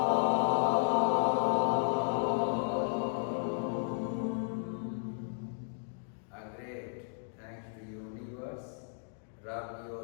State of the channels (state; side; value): silent; right; digital silence